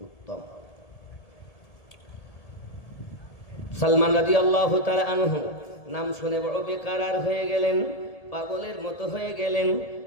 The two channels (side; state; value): right; late; 1.8 ms